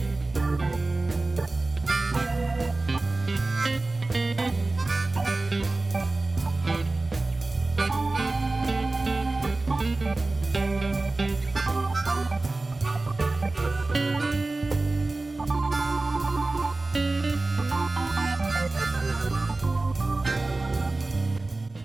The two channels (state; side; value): quieter; left; 3.2 dB